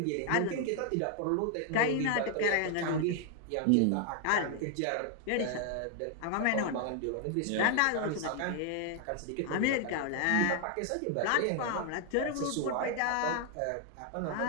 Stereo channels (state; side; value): different; both; correlation 0.00